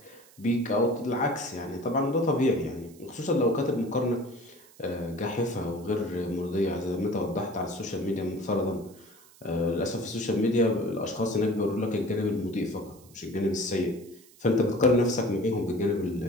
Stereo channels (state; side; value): noise; right; hiss, 25 dB below the sound